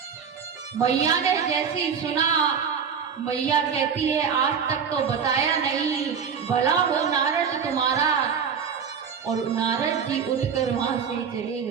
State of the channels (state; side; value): quieter; left; 6.8 dB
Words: मैया ने जैसे ही सुना, मैया कहती है, आज तक तो बताया नहीं, भला हो नारद तुम्हारा। और नारद जी उठकर वहां से चले